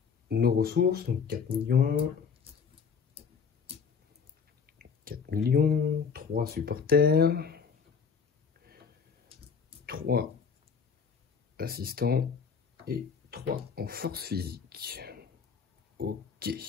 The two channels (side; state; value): right; quieter; 6.0 dB